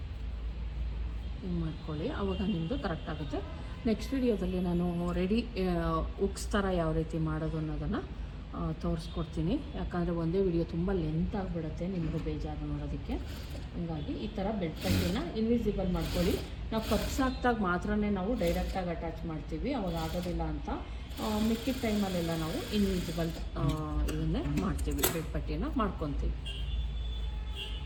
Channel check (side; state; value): both; identical; correlation 1.00